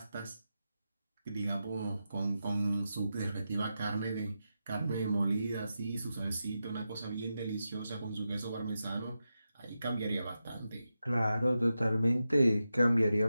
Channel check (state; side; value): inverted; both; correlation -0.90